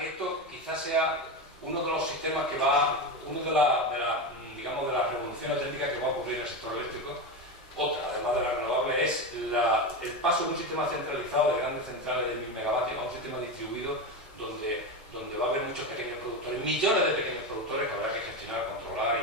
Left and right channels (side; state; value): both; normal; correlation 0.17